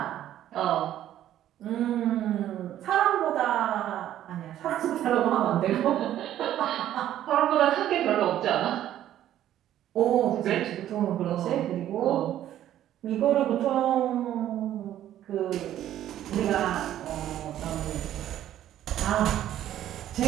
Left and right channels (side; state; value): left; quieter; 12.0 dB